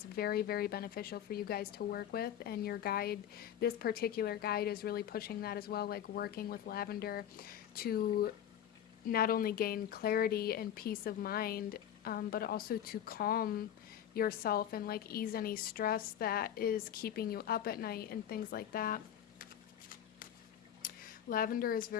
very, very beneficial for you guys to work with. And your guide, this particular guide, is really pushing that as well, like working with lavender to not only gain clarity and peace of mind, but also to calm yourself and like ease any stress that is keeping you up at night and things like that. Lavender is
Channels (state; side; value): quieter; right; 10.2 dB